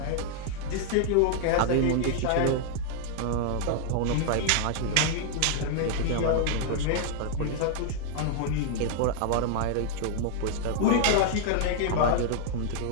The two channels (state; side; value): different; both; correlation -0.01